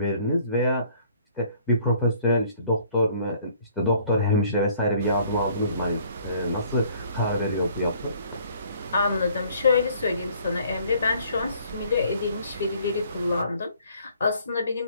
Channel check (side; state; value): both; inverted; correlation -0.59